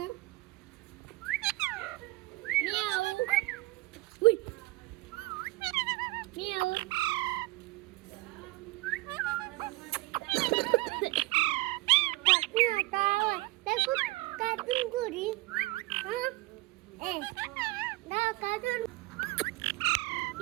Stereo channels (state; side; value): quieter; left; 20.6 dB